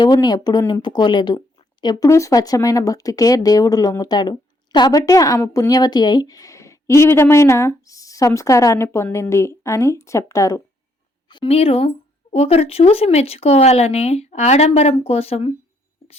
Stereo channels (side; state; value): both; normal; correlation 0.71